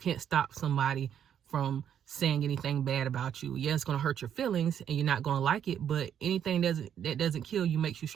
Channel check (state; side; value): quieter; left; 9.1 dB